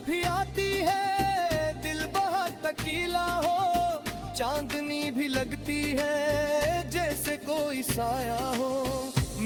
भी आती है दिल बहुत तकीला हो, चांदनी भी लगती है जैसे कोई साया हो।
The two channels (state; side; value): identical; both; correlation 1.00